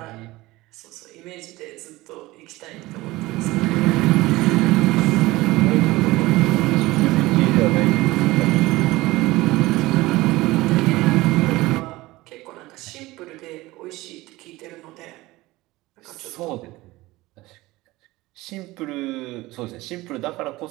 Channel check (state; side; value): quieter; left; 19.4 dB